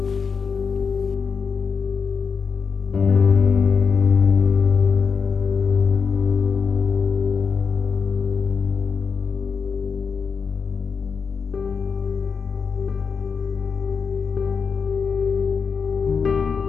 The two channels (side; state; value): right; quieter; 5.7 dB